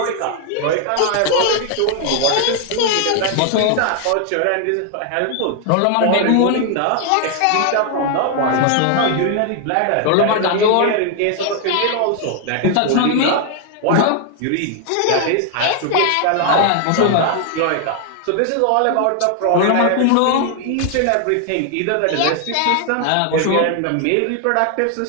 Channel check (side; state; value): both; different; correlation 0.00